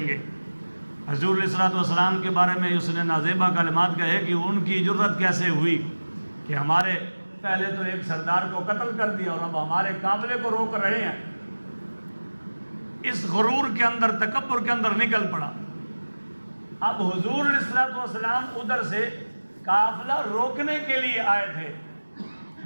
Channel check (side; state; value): both; inverted; correlation -1.00